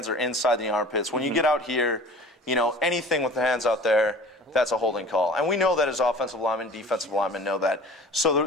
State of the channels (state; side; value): normal; both; correlation 0.43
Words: are inside the armpits. When you get out here, anything with the hands out there, that's a holding call. And we know that as offensive linemen, defensive linemen know that.